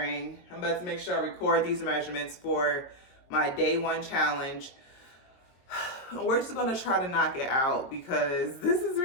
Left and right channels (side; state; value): right; late; 22 ms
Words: I'm about to make sure I record these measurements for my day one challenge. We're just gonna try to knock it out because this is